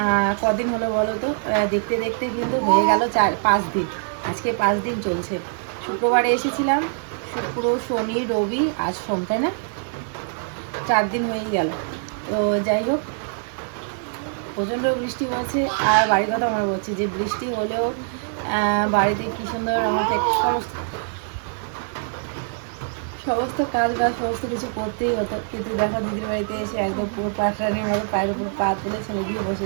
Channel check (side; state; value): left; silent; digital silence